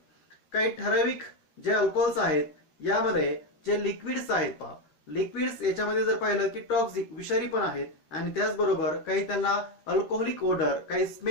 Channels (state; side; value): late; right; 13 ms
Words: काही ठराविक जे alcohols आहेत यामध्ये जे liquids आहेत पहा, liquids याच्यामध्ये जर पाहिलं की टॉक्सिक विषारी पण आहेत आणि त्याचबरोबर काही त्यांना अल्कोहोलिक ओडर, काही